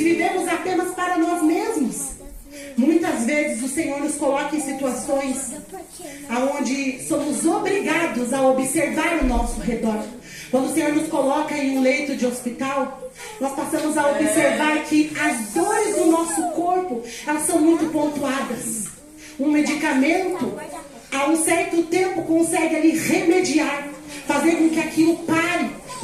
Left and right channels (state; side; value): identical; both; correlation 1.00